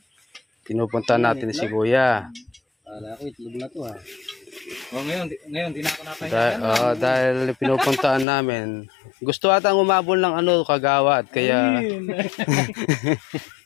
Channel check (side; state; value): right; drops out; at 8.2 s